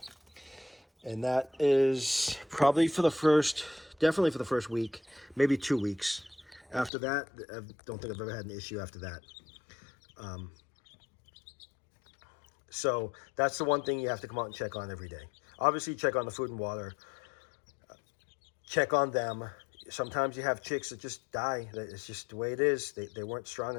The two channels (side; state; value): right; drops out; at 6.9 s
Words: And that is probably definitely for the first week, maybe 2 weeks. After that, I don't think I've ever had an issue after that. So that's the one thing you have to come out and check on every day. Obviously, check on the food and water. Check on them. Sometimes you have chicks that just die. It's just the way it is. They weren't strong